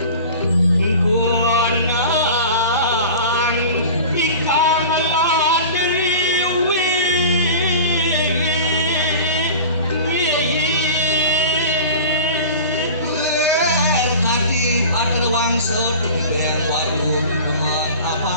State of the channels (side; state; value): both; inverted; correlation -0.37